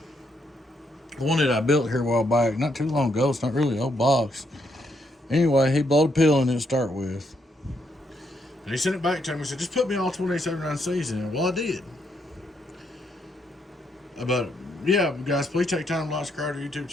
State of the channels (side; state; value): both; normal; correlation 0.76